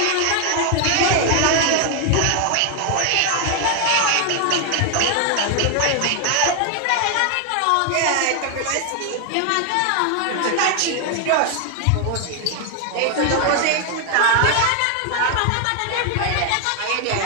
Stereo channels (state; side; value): different; both; correlation 0.00